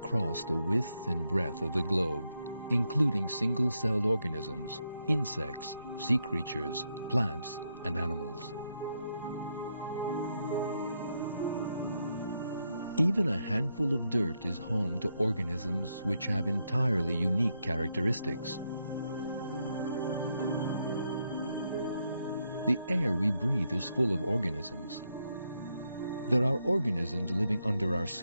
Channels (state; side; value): inverted; both; correlation -0.80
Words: the width and breadth of the globe, including single-celled organisms, insects, sea creatures, plants, and animals. Even a handful of dirt is home to organisms which have entirely unique characteristics. The air we breathe is full of organisms. There are organisms living under our